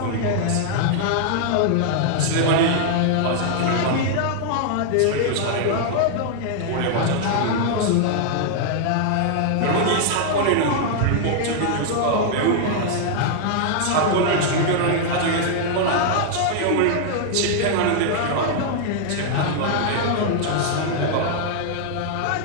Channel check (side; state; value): both; different; correlation -0.01